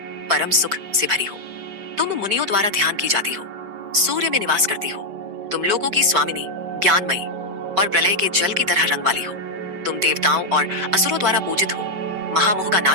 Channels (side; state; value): left; late; 5.1 ms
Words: परम सुख से भरी हो। तुम मुनियों द्वारा ध्यान की जाती हो, सूर्य में निवास करती हो। तुम लोगों की स्वामिनी, ज्ञानमयी और प्रलय के जल की तरह रंग वाली हो। तुम देवताओं और असुरों द्वारा पूजित हो, महामोह का